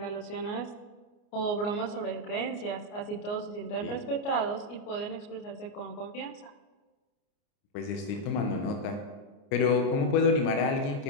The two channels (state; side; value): late; right; 29 ms